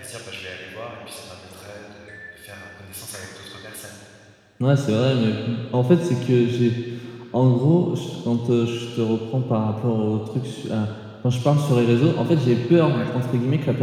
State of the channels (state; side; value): identical; both; correlation 1.00